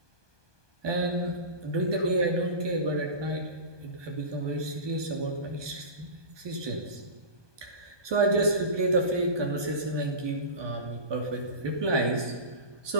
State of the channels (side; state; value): left; late; 1.2 ms